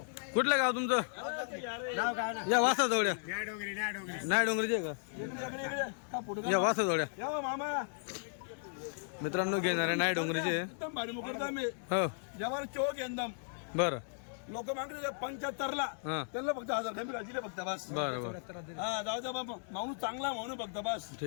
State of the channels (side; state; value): right; silent; digital silence